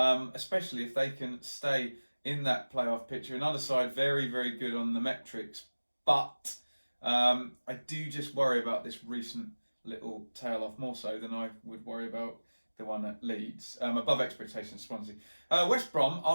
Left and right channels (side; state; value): both; inverted; correlation -1.00